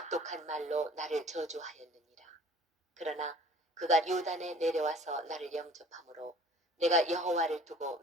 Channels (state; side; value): normal; both; correlation 0.49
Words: 말로 나를 저주하였느니라. 그러나 그가 요단에 내려와서 나를 영접함으로 내가 여호와를 두고